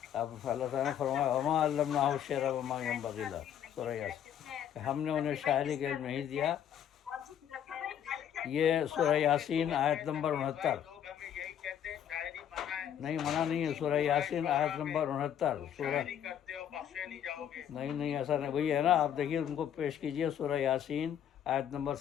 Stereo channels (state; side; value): quieter; right; 9.6 dB